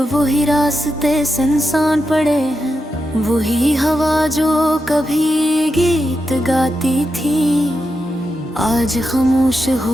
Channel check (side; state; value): both; normal; correlation 0.87